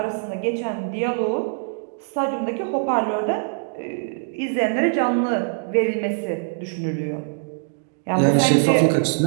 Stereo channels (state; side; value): silent; left; digital silence